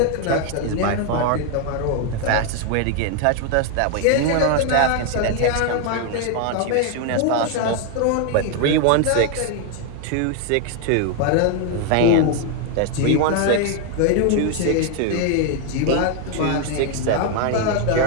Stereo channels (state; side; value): different; both; correlation 0.01